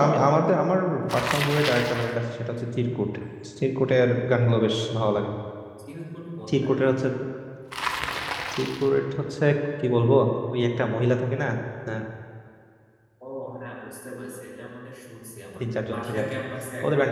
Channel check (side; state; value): both; identical; correlation 1.00